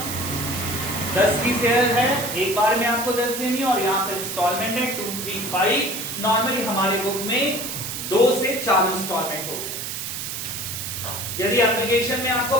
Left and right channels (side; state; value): right; noise; hiss, 5 dB below the sound